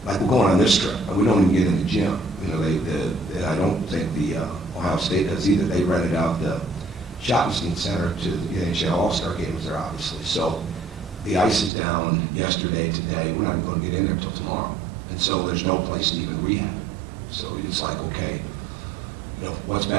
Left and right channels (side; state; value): left; drops out; at 11.7 s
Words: like we're going on this trip, and we don't even get in the gym. You know, and I don't think the Ohio State does either. They rented out the Schottenstein Center to the NHL All-Star games there, obviously. So the ice is down yesterday, today. We're not even going to get in there until tomorrow. And so there's no place to even rehab. So it's like, okay, you know, what's